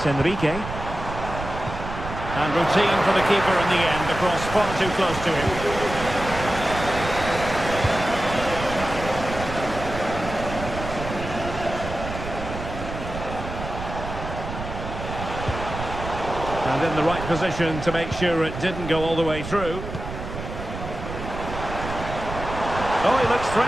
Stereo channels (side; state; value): right; noise; rumble, 8 dB below the sound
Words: Enrique. And routine for the keeper in the end, across far too close to him. And in the right position to make sure it didn't go all the way through. Oh, he looks